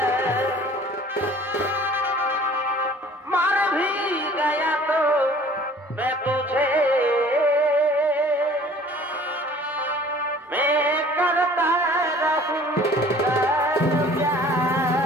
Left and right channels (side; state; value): both; normal; correlation 0.50